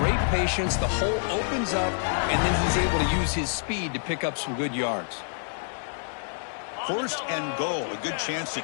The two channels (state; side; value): silent; right; digital silence